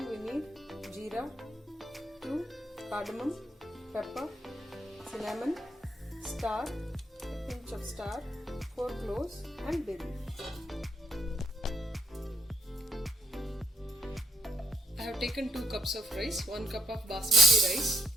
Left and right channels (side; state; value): both; normal; correlation 0.74